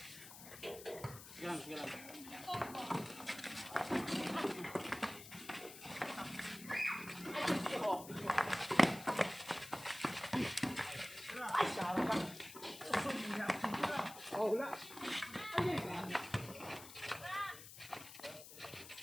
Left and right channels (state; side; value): noise; left; hiss, 14 dB below the sound